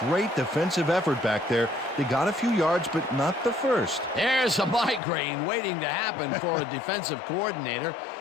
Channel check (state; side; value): drops out; right; at 5.0 s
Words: great defensive effort back there. They got a few yards, but not the first. There's a migraine waiting to happen for a defensive coordinator.